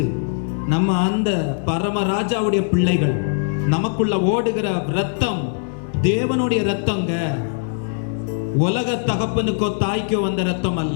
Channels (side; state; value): right; silent; digital silence